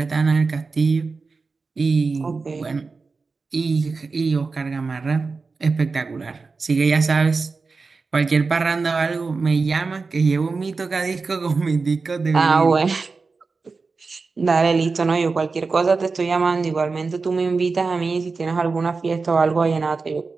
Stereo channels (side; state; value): left; quieter; 4.3 dB